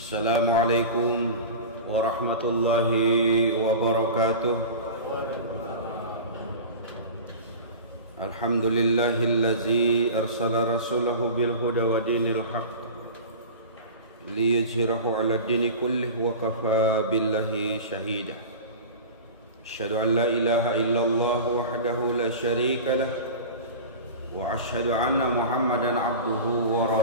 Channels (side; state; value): both; inverted; correlation -0.32